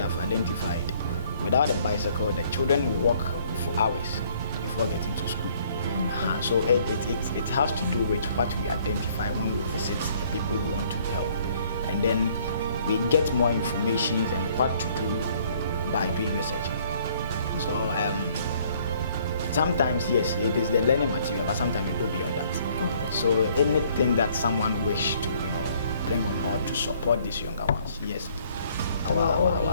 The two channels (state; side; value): inverted; both; correlation -0.61